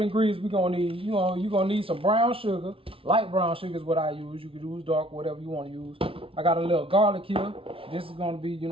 ingredients we're gonna need. You know, you're gonna need some brown sugar. Light brown sugar is what I use. You can use dark, whatever you want to use. I got a little garlic here. This is gonna be, you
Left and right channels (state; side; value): late; left; 0.26 ms